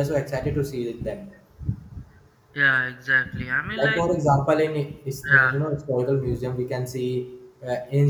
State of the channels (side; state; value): both; identical; correlation 1.00